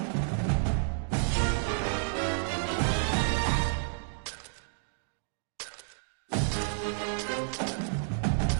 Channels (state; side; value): silent; left; digital silence